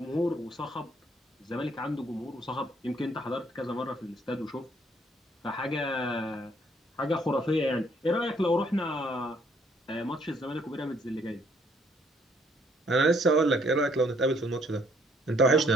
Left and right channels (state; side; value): normal; both; correlation 0.66